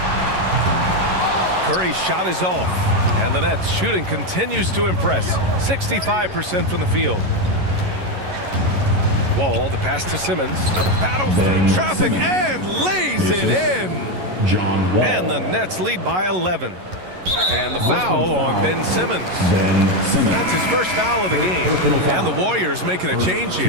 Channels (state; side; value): late; left; 11 ms